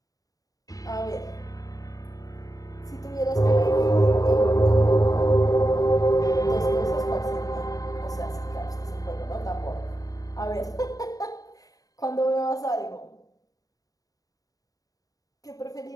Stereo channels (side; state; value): right; late; 0.17 ms